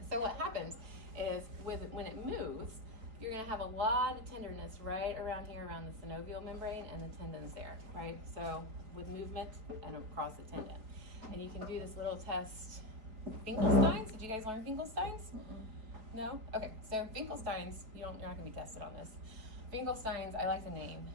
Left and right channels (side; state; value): left; late; 4.3 ms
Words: So what happens is when it moves, you're going to have a lot of tenderness right around here, around the synovial membrane and the tendons there, right? So with movement and across the tendon. And you can do this little test. Finkelstein's? Did you guys learn Finkelstein's? No? Okay, so Finkelstein's, you're not going to be tested on this. Finkelstein's, I like the name,